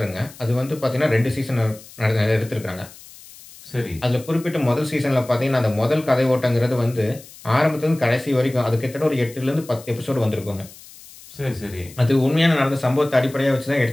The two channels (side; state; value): left; noise; hiss, 20 dB below the sound